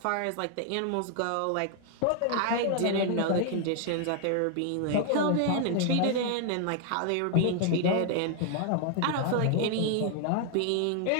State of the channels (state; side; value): different; both; correlation 0.00